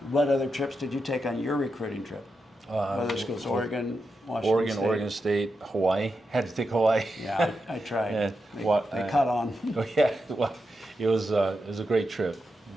What other trips did you take on your recruiting trip? Other schools, Oregon, Washington State. Oregon State, Hawaii. Had to take Hawaii. Yeah, I tried. Yeah, They caught on. Oh yeah, well, it was a great trip,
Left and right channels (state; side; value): normal; both; correlation 0.87